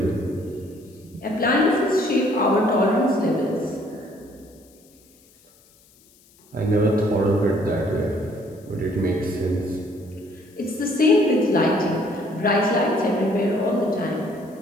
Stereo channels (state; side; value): noise; left; hiss, 29 dB below the sound